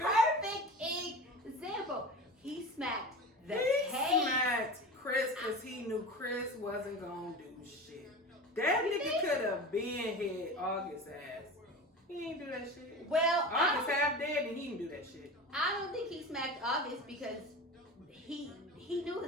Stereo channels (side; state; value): both; normal; correlation 0.31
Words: example. He smacked the smacked Chris because he knew Chris wasn't gonna do shit. That nigga could have been hit August ass. He ain't do that shit. Well, August half dead and he didn't do that shit. I don't think he smacked August because he knew